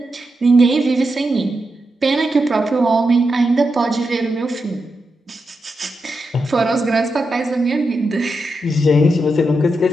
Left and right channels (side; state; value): both; normal; correlation 0.87